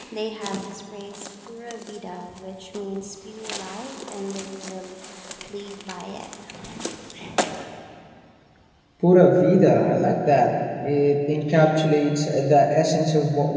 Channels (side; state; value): both; identical; correlation 1.00